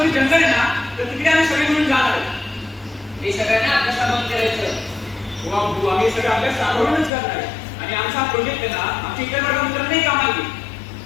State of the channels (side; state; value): right; drops out; at 7.1 s